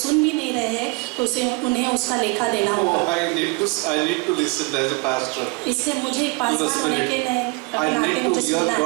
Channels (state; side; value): quieter; left; 28.5 dB